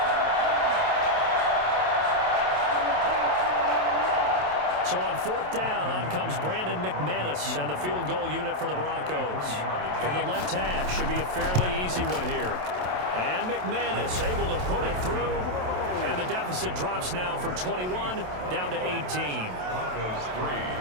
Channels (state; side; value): late; left; 27 ms